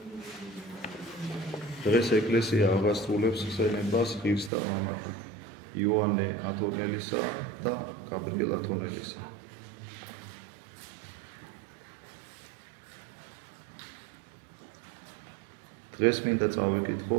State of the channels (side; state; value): left; drops out; at 4.5 s